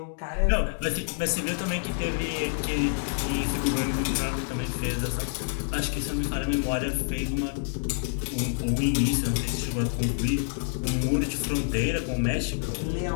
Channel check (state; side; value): silent; right; digital silence